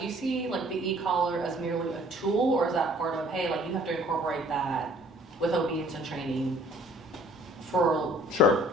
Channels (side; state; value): both; normal; correlation 0.56